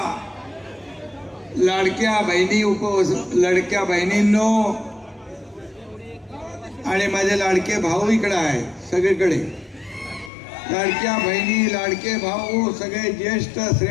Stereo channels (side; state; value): right; drops out; at 10.3 s